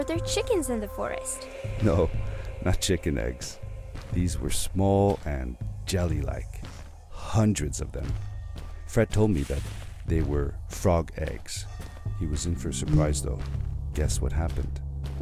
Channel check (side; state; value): both; identical; correlation 1.00